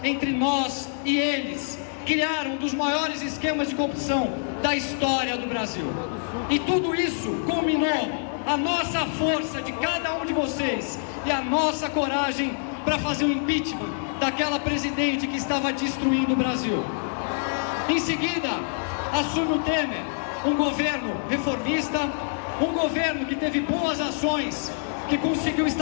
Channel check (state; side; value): silent; right; digital silence